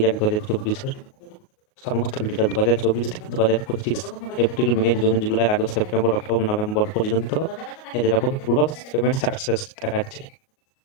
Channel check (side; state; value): right; late; 38 ms